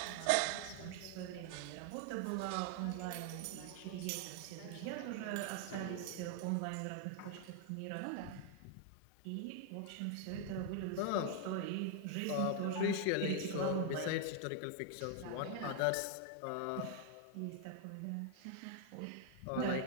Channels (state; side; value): different; both; correlation 0.00